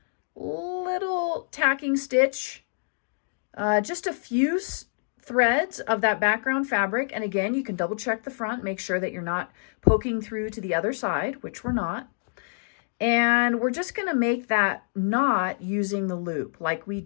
tacking stitch, just a few threads of that background fabric. And again, you can double check the front, make sure that you're not poking through to the other side, which we're not. And we're just going to make that knot using the loop like we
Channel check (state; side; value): silent; right; digital silence